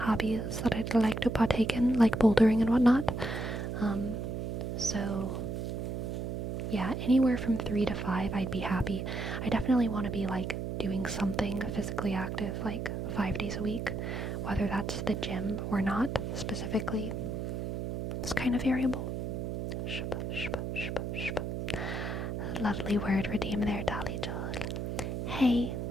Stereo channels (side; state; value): right; noise; hum, 3 dB below the sound